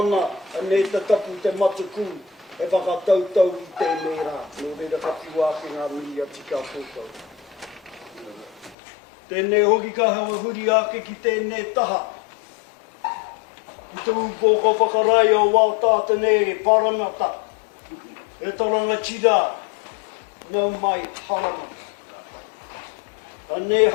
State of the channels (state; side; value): drops out; right; at 8.8 s